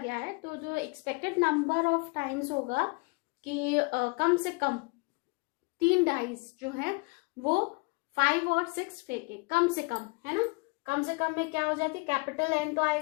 है, तो जो एक्सपेक्टेड नंबर ऑफ टाइम्स होगा कि कम से कम 3 डाइज जो है वो 5 और 6 फेंके, कम से कम, है ना. कम से कम में क्या हो जाती है? कैपिटल N तो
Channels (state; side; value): quieter; right; 28.9 dB